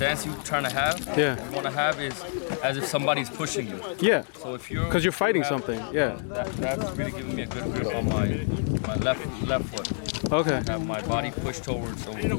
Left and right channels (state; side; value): silent; right; 60 dB below the other